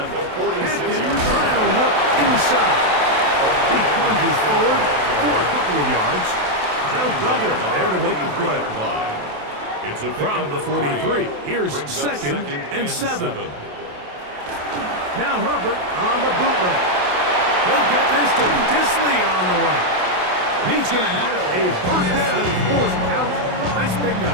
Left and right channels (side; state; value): left; late; 27 ms